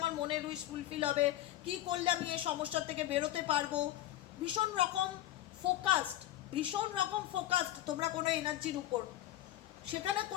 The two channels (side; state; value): right; quieter; 14.1 dB